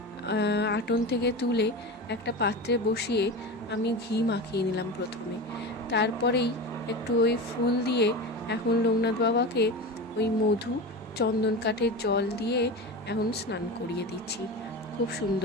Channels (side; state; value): both; normal; correlation 0.26